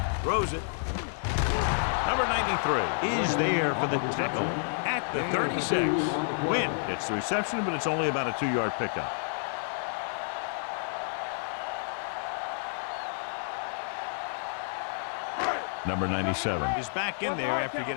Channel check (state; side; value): silent; right; digital silence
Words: Throws it. Number 93 is there for the tackle at the 36. Win gets the reception, but it's only about a 2-yard pickup. Number 97 is back in there after